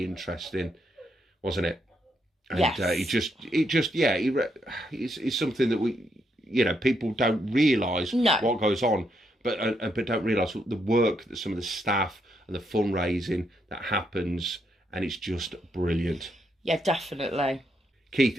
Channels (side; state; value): both; normal; correlation 0.78